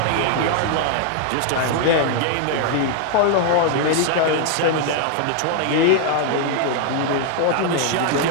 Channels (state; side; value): different; both; correlation 0.00